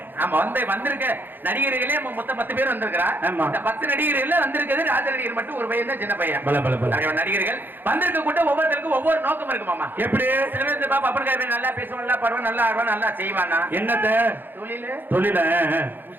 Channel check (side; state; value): left; late; 0.094 ms